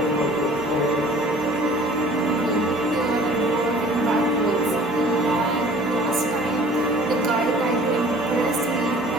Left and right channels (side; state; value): both; normal; correlation 0.49